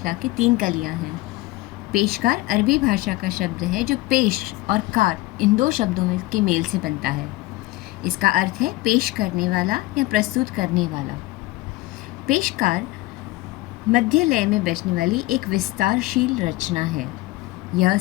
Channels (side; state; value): right; quieter; 19.5 dB